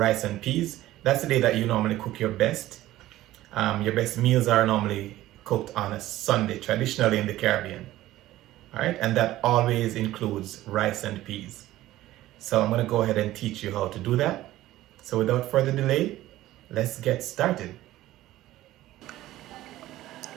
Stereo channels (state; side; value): quieter; left; 15.4 dB